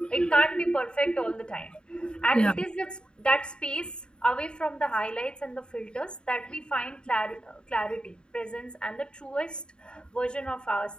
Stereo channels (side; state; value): right; late; 0.050 ms